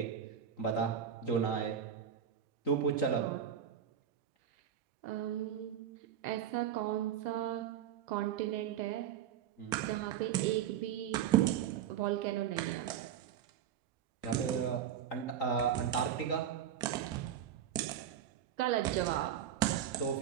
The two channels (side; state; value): left; quieter; 9.4 dB